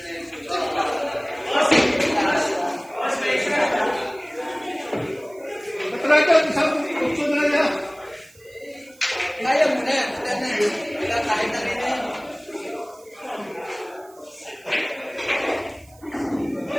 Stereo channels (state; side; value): noise; right; hiss, 27 dB below the sound